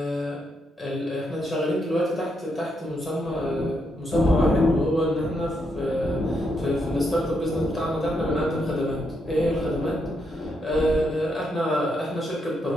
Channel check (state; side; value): normal; both; correlation 0.79